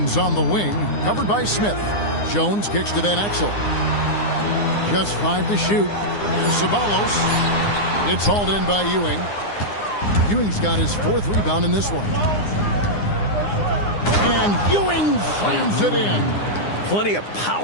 on the wing, covered by Smith. Jones kicks to Van Exel. Just 5 to shoot. Here's Ceballos. It's hauled in by Ewing. Ewing's got his 4th rebound in this one. And Ewing slams it in. Plenty of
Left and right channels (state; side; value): late; right; 9.8 ms